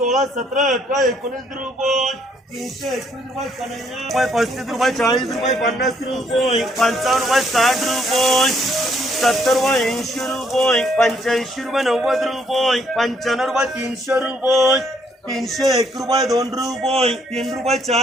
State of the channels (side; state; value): both; normal; correlation 0.69